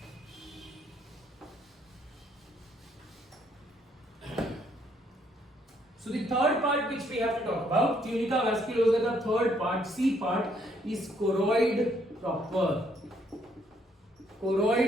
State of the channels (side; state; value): both; normal; correlation 0.69